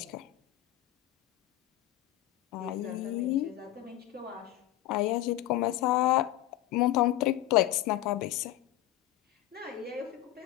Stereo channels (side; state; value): right; quieter; 14.4 dB